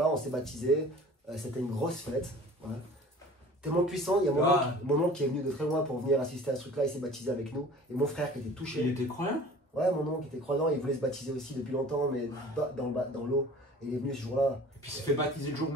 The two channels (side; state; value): both; normal; correlation 0.45